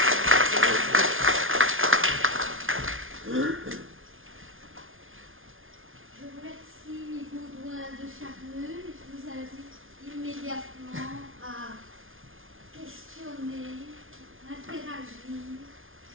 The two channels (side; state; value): left; late; 0.59 ms